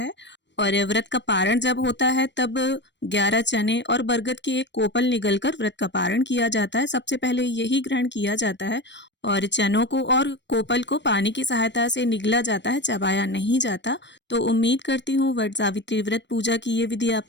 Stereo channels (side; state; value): right; late; 0.52 ms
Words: और व्रत का पारण जब होता है तब 11 चने और बरगद की एक कोपल निगलकर व्रत का पारण किया जाता है। सबसे पहले यही ग्रहण किया जाता है और चनों को और कोपल को पानी की सहायता से निगला जाता है, चबाया नहीं जाता। तो उम्मीद करती हूँ वट सावित्री व्रत पूजा की ये विधि आप